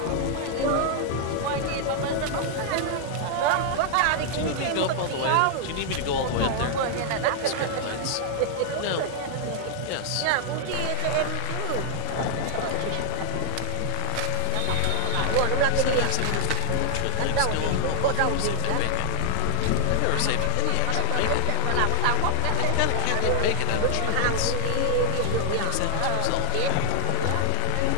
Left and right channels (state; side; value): different; both; correlation 0.00